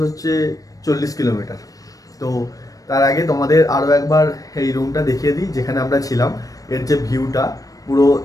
হচ্ছে 40 কিলোমিটার। তো তার আগে তোমাদের আরও একবার এই রুমটা দেখিয়ে দিই যেখানে আমরা ছিলাম। এর যে ভিউটা পুরো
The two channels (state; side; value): late; right; 0.17 ms